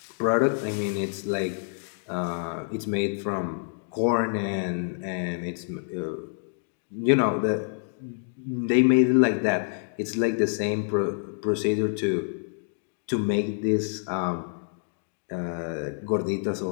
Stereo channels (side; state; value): right; silent; digital silence